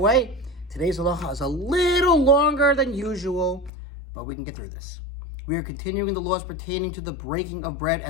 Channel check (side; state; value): right; drops out; at 3.7 s